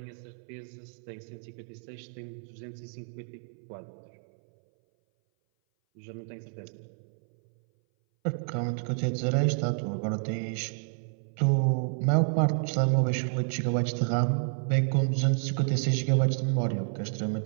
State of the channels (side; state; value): left; silent; 58 dB below the other